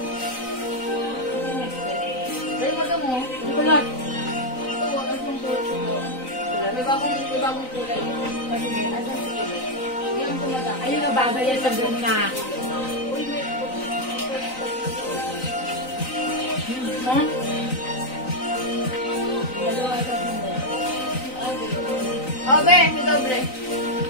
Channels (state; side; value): late; right; 3.9 ms